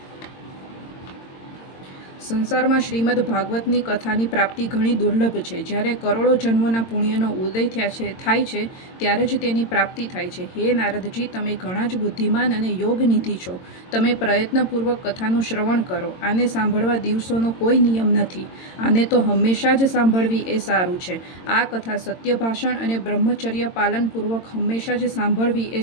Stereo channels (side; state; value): right; late; 22 ms